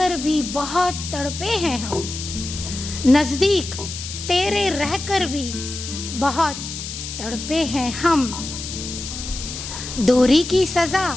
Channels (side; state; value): left; noise; hiss, 8 dB below the sound